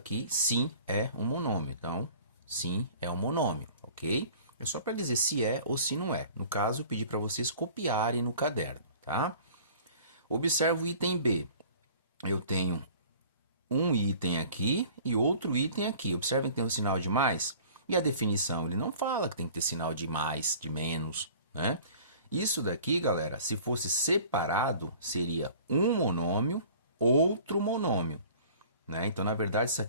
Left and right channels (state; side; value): inverted; both; correlation -0.47